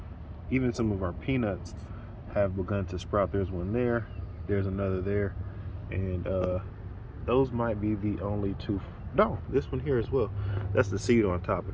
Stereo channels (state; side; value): identical; both; correlation 1.00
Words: even some of our peanuts have begun to sprout. There's one there, there's another there, and those might be the only two. No, this one here as well. That's the seed on top,